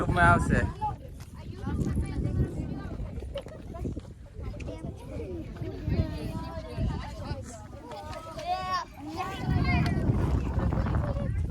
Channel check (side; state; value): both; identical; correlation 1.00